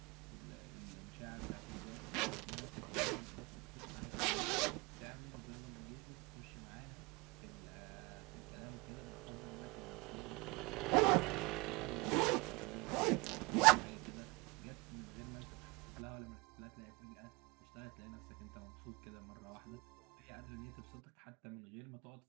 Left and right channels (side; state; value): left; quieter; 26.0 dB